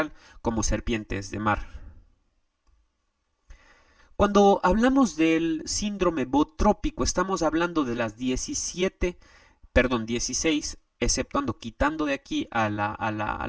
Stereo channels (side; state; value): both; identical; correlation 1.00